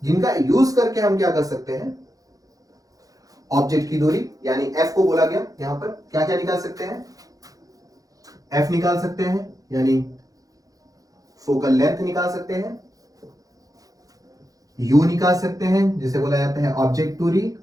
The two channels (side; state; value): left; late; 0.17 ms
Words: जिनका यूज करके हम क्या कर सकते हैं, ऑब्जेक्ट की दूरी यानी f को बोला गया, यहां पर क्या क्या निकाल सकते हैं, f निकाल सकते हैं, यानी फोकल लेंथ निकाल सकते हैं, u निकाल सकते हैं जिसे बोला जाता है ऑब्जेक्ट दूरी,